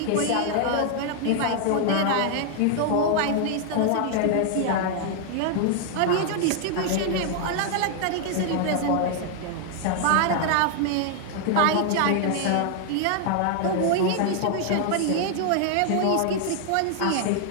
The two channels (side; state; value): both; different; correlation 0.00